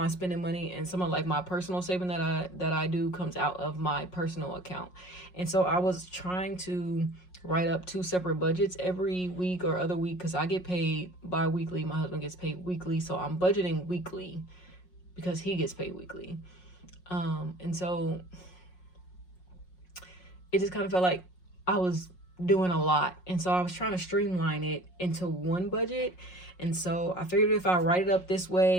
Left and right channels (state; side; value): late; right; 5.5 ms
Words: spending money, and some of like my personal saving that I do comes out of my personal account. And so I was trying to write up two separate budgets every week or other week because I get paid bi-weekly. My husband gets paid weekly, so I'm budgeting weekly because he gets paid weekly. And so it just kind of felt like I was doing a lot. And so I was trying to streamline it into one budget. And so I figured if I write it up this